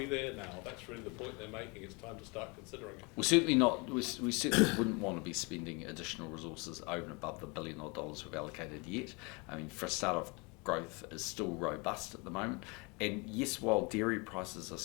there now? That's really the point they're making. It's time to start considering it. We're certainly not. We certainly wouldn't want to be spending additional resources over and above the $1 billion we've allocated yet. I mean, for a start off, growth is still robust at the moment. And yes, while dairy prices are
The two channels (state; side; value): quieter; right; 29.1 dB